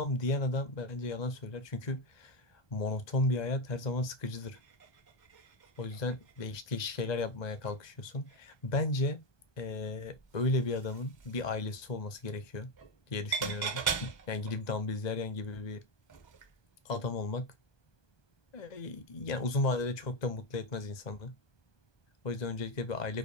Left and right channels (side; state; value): right; late; 1.2 ms